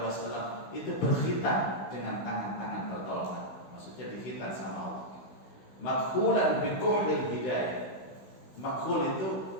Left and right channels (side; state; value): right; late; 16 ms